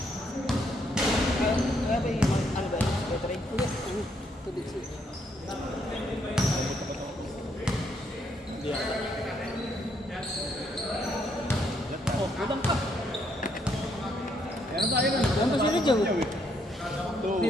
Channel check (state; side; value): normal; both; correlation 0.73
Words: Oh, kulang pa. Ayan tayo na. Yan ba sila dyan?